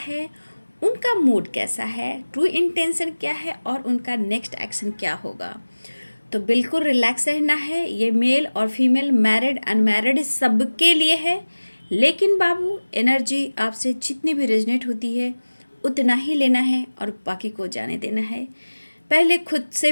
उनका मूड कैसा है, ट्रू इंटेंशन क्या है और उनका नेक्स्ट एक्शन क्या होगा। तो बिल्कुल रिलैक्स रहना है। ये मेल और फीमेल, मैरिड अनमैरिड सबके लिए है। लेकिन बाबू, एनर्जी आपसे जितनी भी रेजनेट होती है उतना ही लेना है और बाकी को जाने देना है। पहले खुद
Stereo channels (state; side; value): inverted; both; correlation -1.00